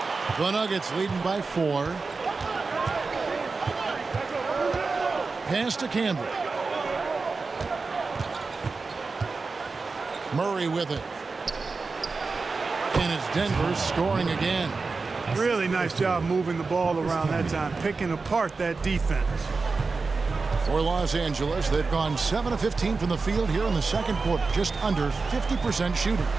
The Nuggets leading by 4. Pass to Campbell. Murray with it. And it's Denver scoring again. Really nice job moving the ball around that time, picking apart that defense. For Los Angeles, they've gone 7 of 15 from the field here in the second quarter, just under 50% shooting.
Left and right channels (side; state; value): left; quieter; 4.2 dB